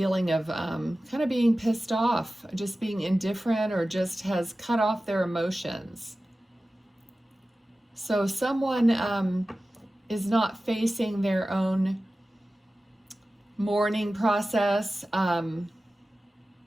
of kind of being pissed off, just being indifferent, or just has cut off their emotions. So someone is not facing their own mourning process,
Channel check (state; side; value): normal; both; correlation 0.95